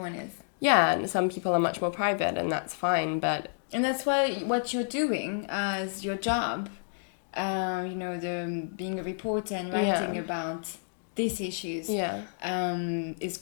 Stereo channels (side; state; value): right; silent; digital silence